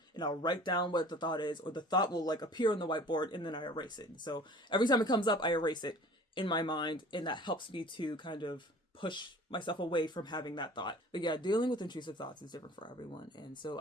and I'll write down what the thought is, or the thought will like appear on the whiteboard and then I erase it. So every time it comes up, I erase it in my mind, and that helps me to kind of push myself away from having that thought. But yeah, dealing with intrusive thoughts is different for everyone. And so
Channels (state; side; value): normal; both; correlation 0.46